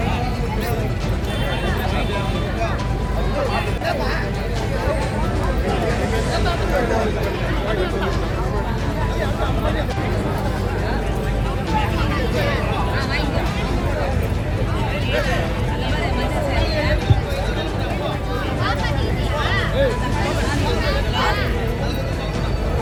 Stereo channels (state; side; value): identical; both; correlation 1.00